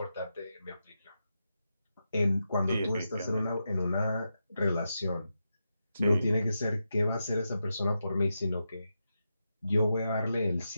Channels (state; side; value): inverted; both; correlation -0.88